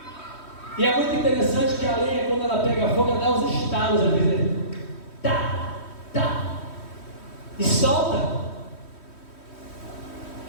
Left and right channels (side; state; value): right; late; 3.1 ms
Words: E é muito interessante que a lenha, quando ela pega fogo, ela dá uns estalos, às vezes. Tá, tá, e solta